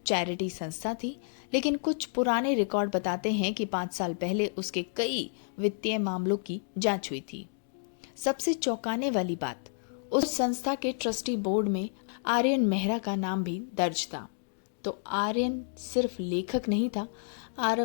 चैरिटी संस्था थी, लेकिन कुछ पुराने रिकॉर्ड बताते हैं कि 5 साल पहले उसके कई वित्तीय मामलों की जांच हुई थी। सबसे चौंकाने वाली बात, उस संस्था के ट्रस्टी बोर्ड में आर्यन मेहरा का नाम भी दर्ज था। तो आर्यन सिर्फ लेखक नहीं था,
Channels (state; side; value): silent; right; digital silence